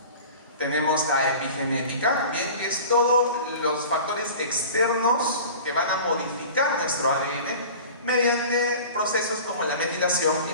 Tenemos la epigenética, bien, que es todos los factores externos que van a modificar nuestro ADN mediante procesos como la metilación y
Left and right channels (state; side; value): inverted; both; correlation -0.39